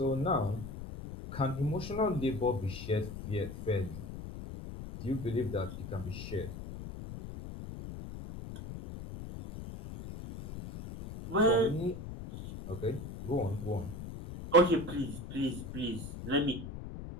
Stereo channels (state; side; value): noise; left; rumble, 9 dB below the sound